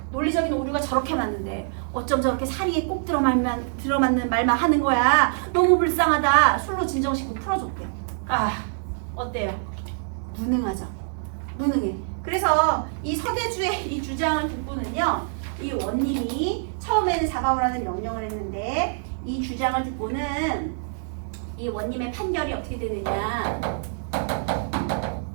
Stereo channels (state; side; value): silent; left; digital silence